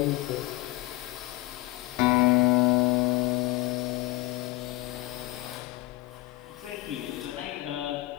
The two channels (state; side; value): quieter; right; 19.5 dB